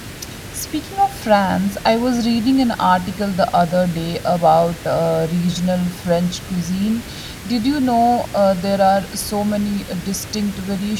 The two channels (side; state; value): both; identical; correlation 1.00